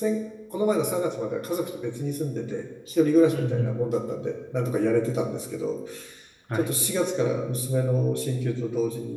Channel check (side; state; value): both; identical; correlation 1.00